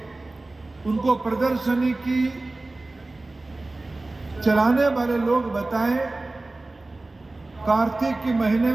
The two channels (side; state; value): left; quieter; 3.0 dB